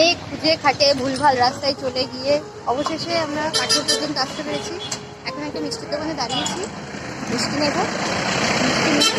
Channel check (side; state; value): both; identical; correlation 1.00